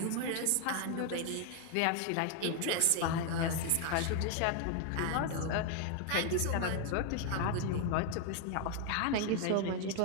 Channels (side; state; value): both; different; correlation 0.00